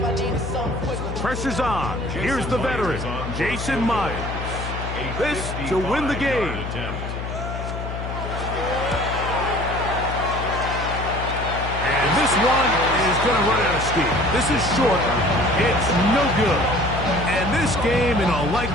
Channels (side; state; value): left; noise; hum, 6 dB below the sound